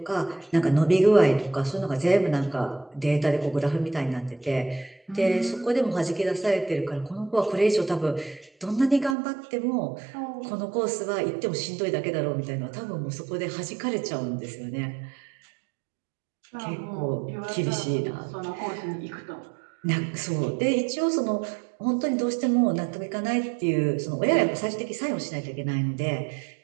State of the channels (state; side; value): drops out; left; at 9.2 s